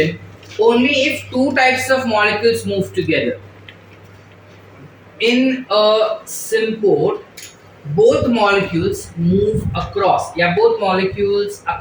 only if two types of molecules move together. In a symport, both molecules move across, both molecules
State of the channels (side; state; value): both; identical; correlation 1.00